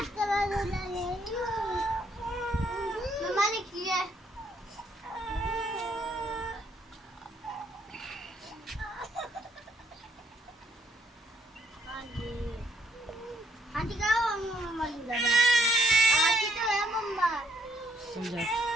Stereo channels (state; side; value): normal; both; correlation 0.70